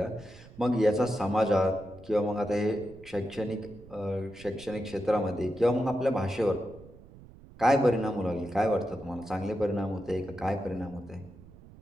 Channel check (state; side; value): noise; right; rumble, 20 dB below the sound